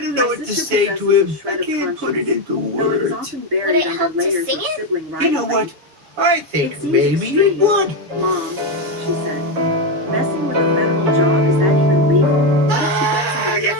don't know what to say to him. I can't put it into words. Would it help to sing it? You know what? I think maybe it would. Mom, she said, messing with a federal job, is that even legal? What if she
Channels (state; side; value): late; left; 6.9 ms